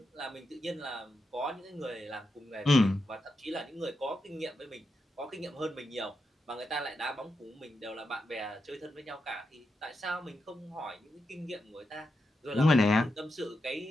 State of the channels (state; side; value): normal; both; correlation 0.86